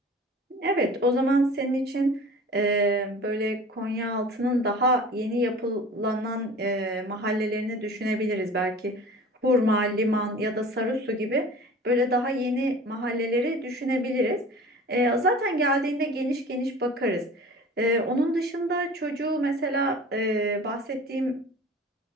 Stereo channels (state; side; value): normal; both; correlation 0.41